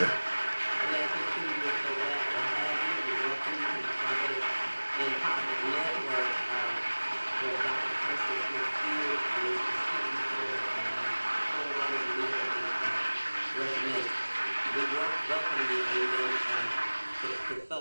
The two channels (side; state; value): both; inverted; correlation -1.00